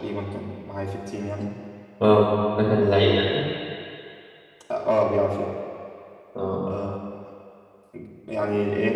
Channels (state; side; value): identical; both; correlation 1.00